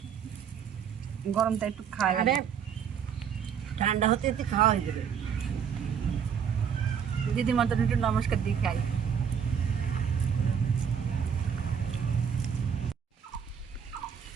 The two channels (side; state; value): left; quieter; 7.6 dB